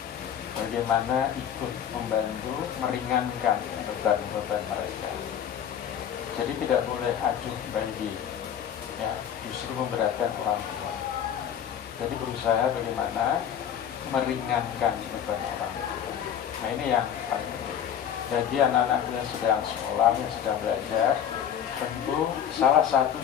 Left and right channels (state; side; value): quieter; right; 9.2 dB